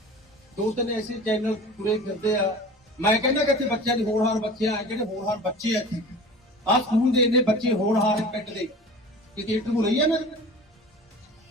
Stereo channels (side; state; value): both; normal; correlation 0.39